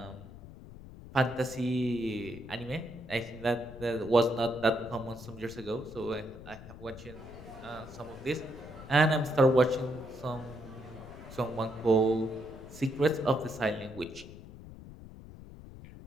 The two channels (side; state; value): left; noise; rumble, 15 dB below the sound